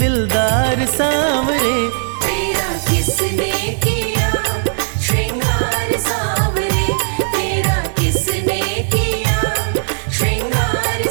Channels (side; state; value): left; silent; digital silence